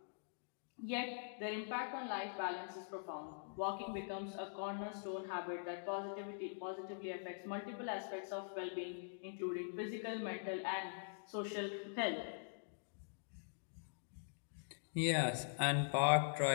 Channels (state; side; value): silent; right; digital silence